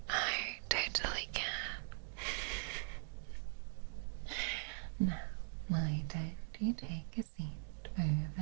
I totally can. Now, why don't you take a seat over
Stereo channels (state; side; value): silent; left; digital silence